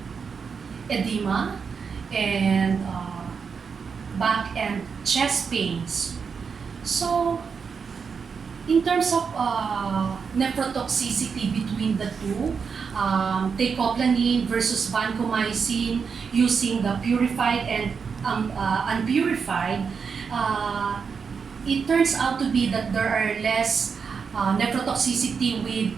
edema and back and chest pains. So, in terms of nephrotoxicity between the two, teicoplanin versus vancomycin using the purified and unpurified, it turns out to be that there are less nephrotoxicity with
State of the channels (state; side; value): quieter; left; 5.9 dB